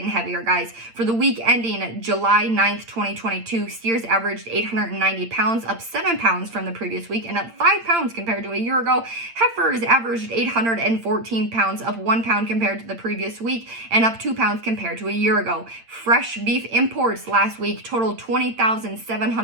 heavier, guys. For the week ending July 9th, 2022, steers averaged 890 pounds, up 7 pounds from the previous week, and up 5 pounds compared to a year ago. Heifers averaged 814 pounds, up 1 pound compared to the previous week, and up 2 pounds compared to a year ago. Fresh beef imports last week totaled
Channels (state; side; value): late; left; 8.8 ms